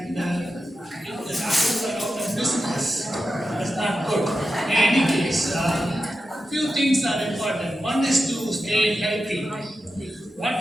if the doctors are out of business, that's not good. In any case, few things are important. One is to stay healthy.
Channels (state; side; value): normal; both; correlation 0.90